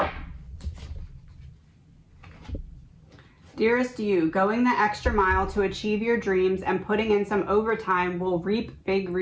Dearest you, going the extra mile to achieve your dreams and putting in some overtime will reap big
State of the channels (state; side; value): identical; both; correlation 1.00